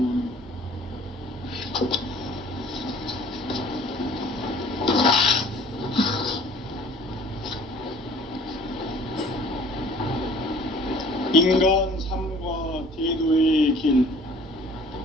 인간 삶과 대도의 길.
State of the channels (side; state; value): both; normal; correlation 0.51